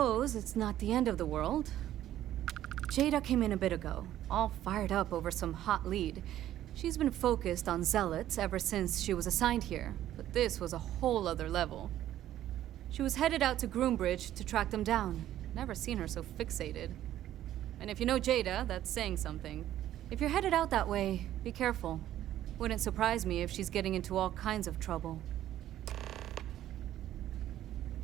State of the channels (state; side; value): quieter; left; 12.6 dB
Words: it's not the end of the world. Jada came in a bit ago, all fired up over some hot lead. She's been focused on zealots ever since she was assigned here, but this was a whole other level. She was headed out to Groombridge to track them down. Never seen her so fixated. And if you know Jada, that's saying something. If you're headed out that way, be careful. Wouldn't surprise me if she's getting into all kinds of trouble.